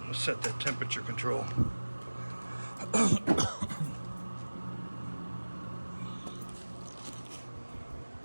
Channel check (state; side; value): inverted; both; correlation -1.00